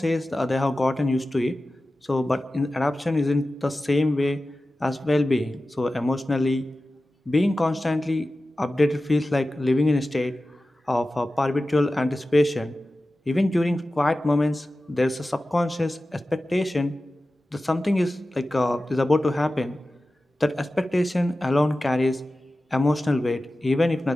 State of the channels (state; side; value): normal; both; correlation 0.95